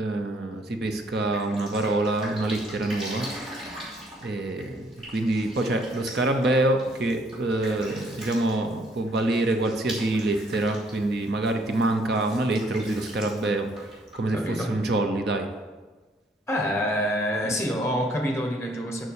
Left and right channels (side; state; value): both; normal; correlation 0.65